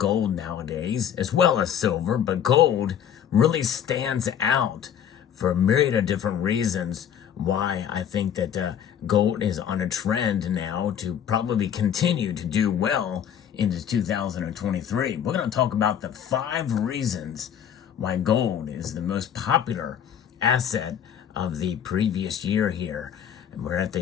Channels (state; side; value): quieter; right; 9.1 dB